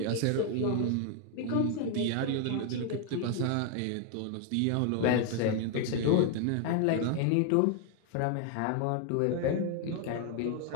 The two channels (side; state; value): both; different; correlation 0.00